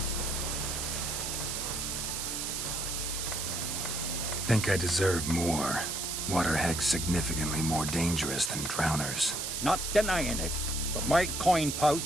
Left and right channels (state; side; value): noise; right; hiss, 3 dB below the sound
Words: Think I deserve more. Waterhags significantly more dangerous than drowners. Not denying it, but my coin